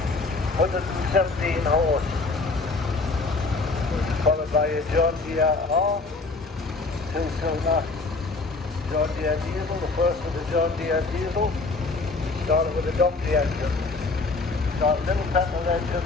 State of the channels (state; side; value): quieter; right; 3.7 dB